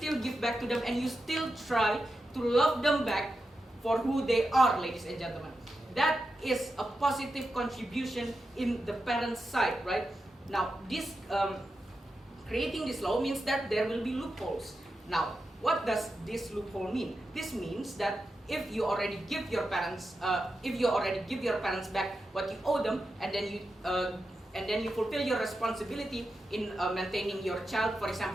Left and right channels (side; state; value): both; normal; correlation 0.89